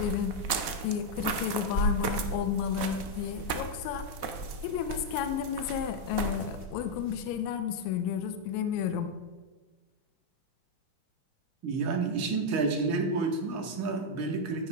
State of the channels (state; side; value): late; right; 4.1 ms